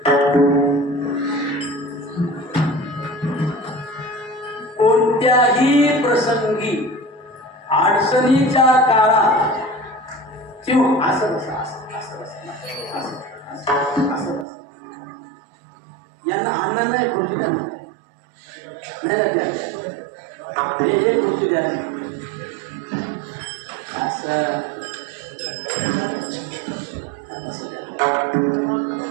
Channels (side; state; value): left; drops out; at 14.5 s